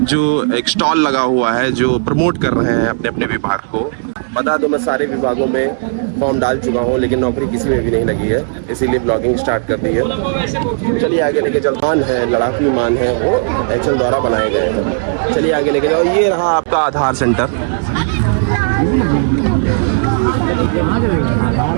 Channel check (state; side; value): silent; left; 70 dB below the other